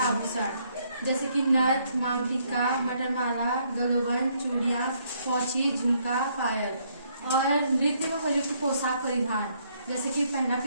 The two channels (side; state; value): both; inverted; correlation -0.70